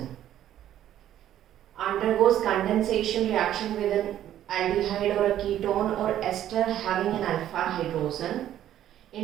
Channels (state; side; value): quieter; left; 11.7 dB